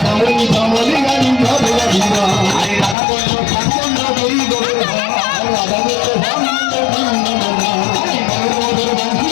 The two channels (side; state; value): right; drops out; at 3.0 s